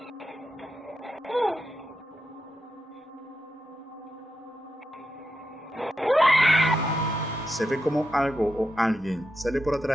Se ve como algo o alguien sale por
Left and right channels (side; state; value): both; normal; correlation 0.87